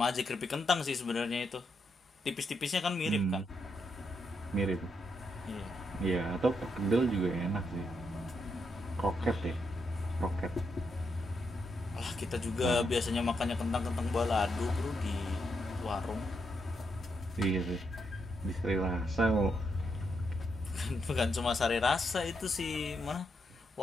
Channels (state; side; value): normal; both; correlation 0.81